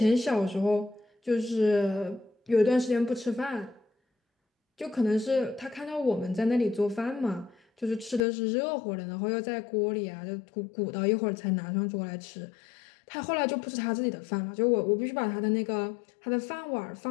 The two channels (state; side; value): drops out; right; at 8.2 s